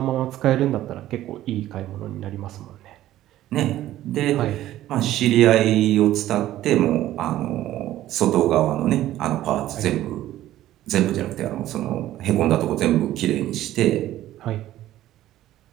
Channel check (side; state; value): left; quieter; 13.9 dB